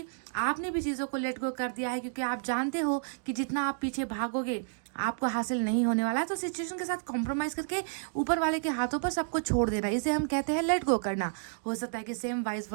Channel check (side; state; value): left; silent; digital silence